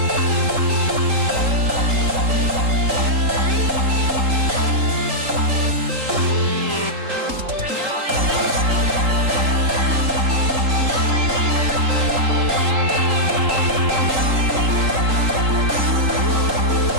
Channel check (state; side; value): late; left; 3.8 ms